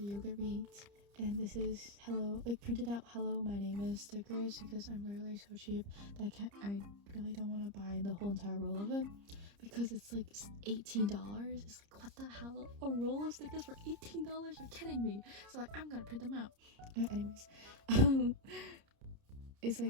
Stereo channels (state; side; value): late; left; 30 ms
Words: yogurt we ate. And this is hello, like printed out hello my name is stickers, because I'm literally so cheap that I really don't want to buy the whole entire roll of it, because it's like $18. It's like, what the hell, a roll of stickers for $18? You're kidding me. So like, I'm gonna print them out. Anyways, it's